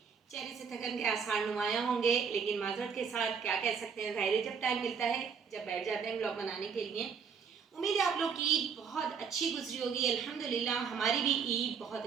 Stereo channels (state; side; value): quieter; left; 6.3 dB